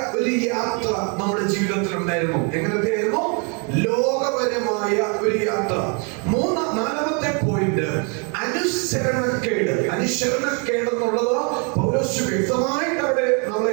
ഒരു യാത്ര നമ്മുടെ ജീവിതത്തിൽ ഉണ്ടായിരുന്നു. എങ്ങനത്തെയായിരുന്നു? ലോകപരമായ ഒരു യാത്ര. 4-ാമത്തെ പോയിന്റ് അനുസരണക്കേട്. അനുസരണക്കേട് എന്നുള്ളത് പൗലോസ് വ്യക്തമായിട്ട് അവിടെ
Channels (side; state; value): left; quieter; 35.8 dB